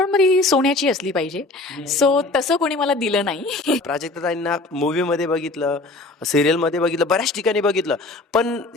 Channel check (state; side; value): quieter; right; 3.1 dB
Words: मग ती सोन्याची असली पाहिजे. सो तसं कोणी मला दिलं नाही. प्राजक्ताताईंना मूव्हीमध्ये बघितलं, सिरियलमध्ये बघितलं, बऱ्याच ठिकाणी बघितलं. पण